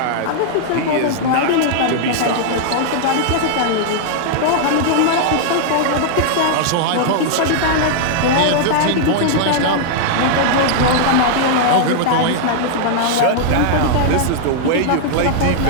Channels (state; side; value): different; both; correlation -0.01